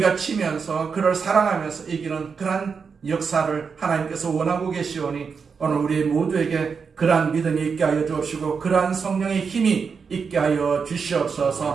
치면서 그를 사랑하면서 이기는 그러한 역사를 하나님께서 원하고 계시오니 오늘 우리 모두에게 그러한 믿음이 있게 하여 주옵시고 그러한 성령의 힘이 있게 하여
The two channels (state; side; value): quieter; left; 5.7 dB